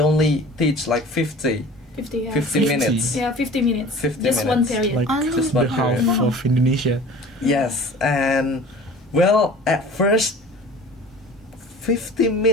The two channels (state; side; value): normal; both; correlation 0.43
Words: only teach like 50 minutes. Yeah, 50 minutes. 50 Just one minutes. period. Like Just the one half period. of Indonesia. Yes, and well, at first 50